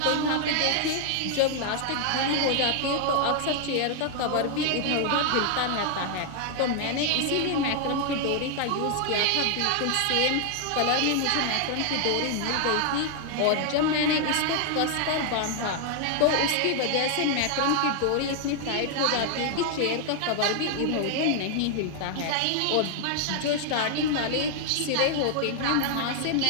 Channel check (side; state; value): both; different; correlation 0.00